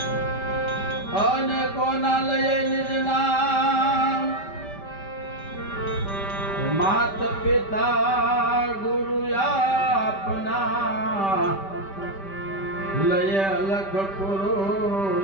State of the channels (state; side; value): late; right; 5.1 ms